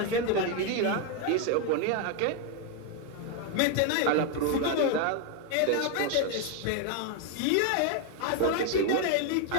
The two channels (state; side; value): different; both; correlation 0.01